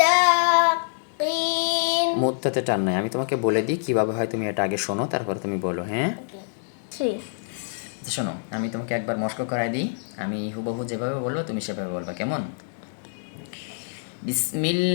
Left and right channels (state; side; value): silent; right; digital silence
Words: মুত্তাতে টান নাই, আমি তোমাকে বলে দিই কিভাবে হয়, তুমি এটা আগে শোনো তারপর তুমি বলো। হ্যাঁ, শোনো, আমি তোমাকে একবার মস্ক করাই দিই, আমি হুবহু যেভাবে বলবো তুমি সেভাবে বলবা, কেমন?